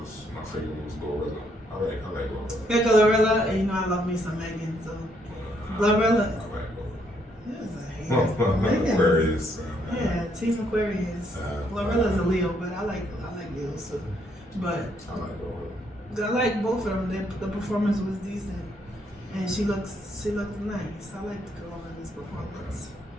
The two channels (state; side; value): normal; both; correlation 0.72